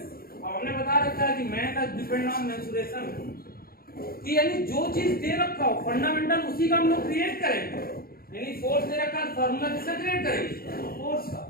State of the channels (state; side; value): late; right; 0.43 ms